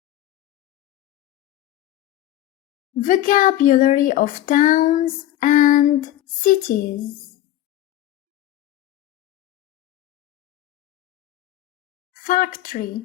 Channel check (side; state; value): right; quieter; 13.6 dB